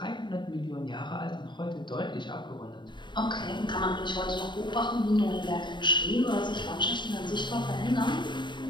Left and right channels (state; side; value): late; right; 0.22 ms